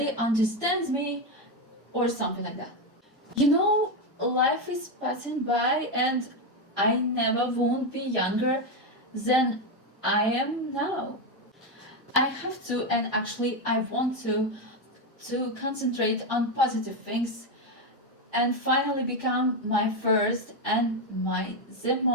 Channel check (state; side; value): normal; both; correlation 0.09